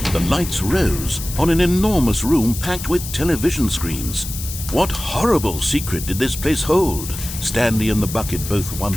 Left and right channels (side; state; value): left; noise; hiss, 9 dB below the sound